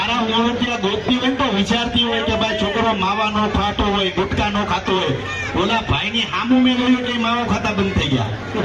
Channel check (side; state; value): both; identical; correlation 1.00